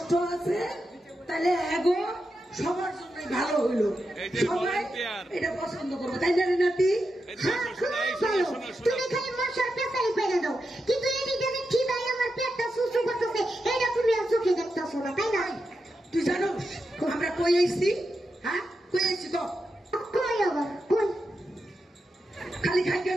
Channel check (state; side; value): normal; both; correlation 0.88